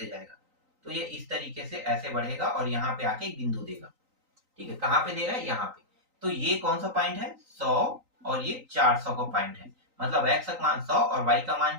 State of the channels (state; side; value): late; left; 3.9 ms